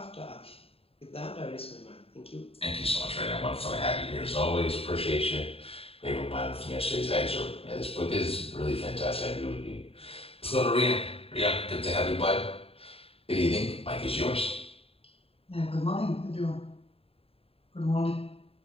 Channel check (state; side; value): late; right; 0.28 ms